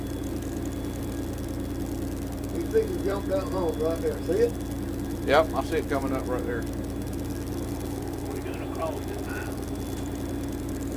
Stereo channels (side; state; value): both; identical; correlation 1.00